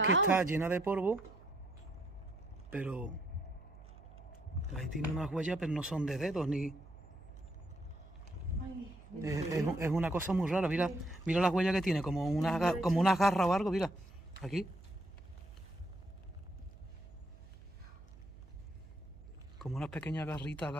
que está llena de polvo. Pero... ahí tiene unas huellas, pero no son de dedos ni... Ay, Es una cosa muy rara. Mira las huellas que tiene, como unas garras o algo, mira. Aquí. Como unas pequeñas garritas,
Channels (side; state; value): right; noise; hum, 19 dB below the sound